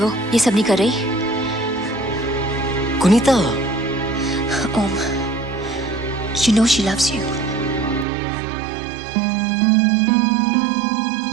ये सब नहीं कर रही? गुनीता। ओम, you know she loves you.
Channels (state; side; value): drops out; left; at 8.1 s